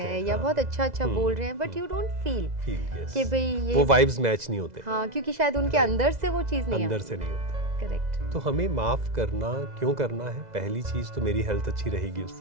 या बहुत अच्छा बोल रहे हैं, बट यू डोंट फील कि भाई ये वो वाइब्स मैच नहीं होते। हाँ, क्योंकि शायद उनके अंदर से वो चीज नहीं, अंदर से नहीं होता। करेक्ट। तो हमें माफ करना क्यों करना है? पहली चीज तो मेरी हेल्थ अच्छी रहेगी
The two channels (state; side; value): late; left; 2.0 ms